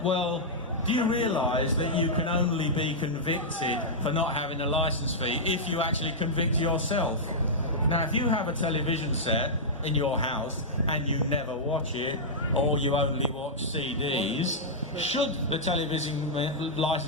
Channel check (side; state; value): both; normal; correlation -0.10